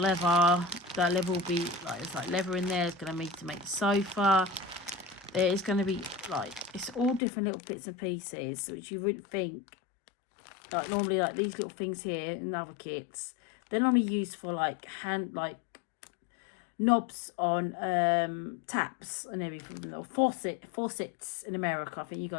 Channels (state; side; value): drops out; right; at 7.2 s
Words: That leather will be like, it's like leather in there. It's going to need to make the sofa. It's going to be like, it's all different little bits and pieces, which you wouldn't think. Like normally, like these little things here in other kits, they're normally used for like knobs on taps and everything, or faucets in America. I think you